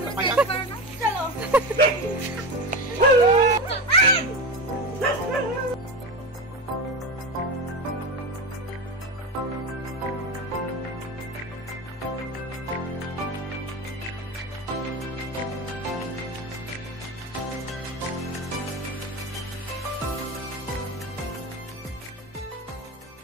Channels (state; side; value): normal; both; correlation 0.22